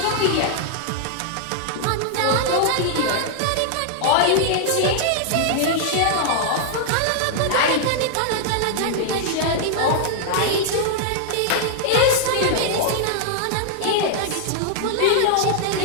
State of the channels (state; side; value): different; both; correlation 0.00